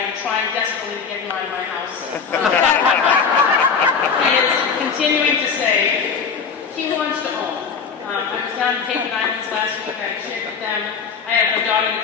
am trying desperately to get him out of my house. He is continuing to say he wants to own. I was down in Cadigan Islands last week. I shared with them. I have a daughter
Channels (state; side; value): quieter; right; 5.9 dB